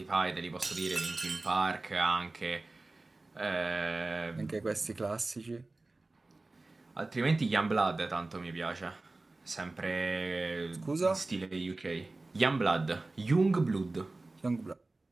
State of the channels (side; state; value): left; quieter; 3.1 dB